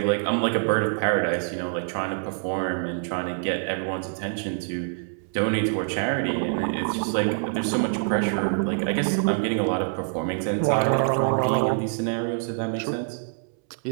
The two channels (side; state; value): left; silent; 61 dB below the other